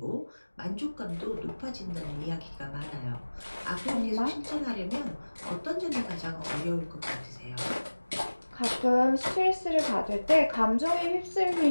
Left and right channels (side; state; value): both; inverted; correlation -1.00